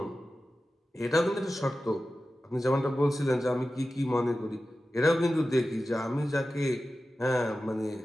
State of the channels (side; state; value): both; normal; correlation 0.94